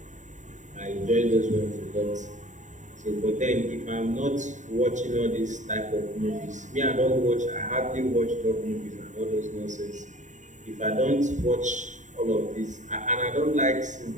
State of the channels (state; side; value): late; left; 0.36 ms